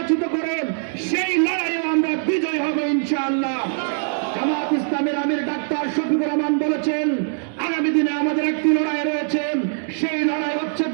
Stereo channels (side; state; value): left; silent; digital silence